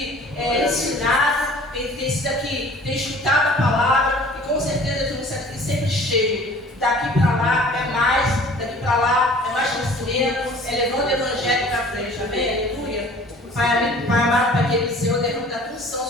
ensinados, tem sido aqui, tem escutado a palavra e com certeza vão ser aqui sempre cheios. Daqui para lá é mais, daqui para lá é mais crescimento, é levando o evangelho para frente, amém? Aleluia. Pai amado, Pai querido, Senhor, derrama da unção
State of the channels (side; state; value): both; normal; correlation 0.49